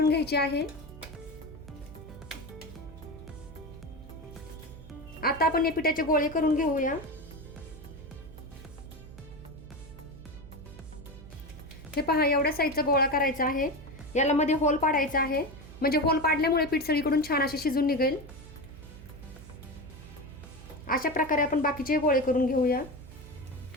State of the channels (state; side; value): noise; right; hum, 16 dB below the sound